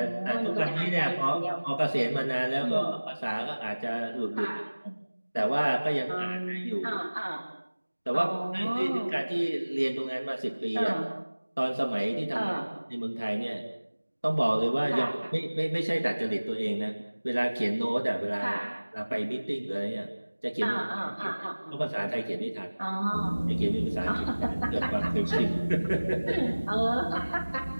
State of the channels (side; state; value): both; inverted; correlation -1.00